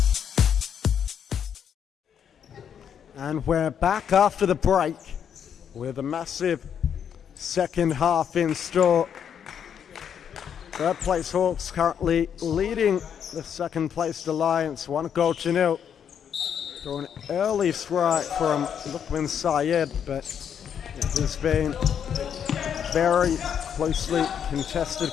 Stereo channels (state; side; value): quieter; right; 8.3 dB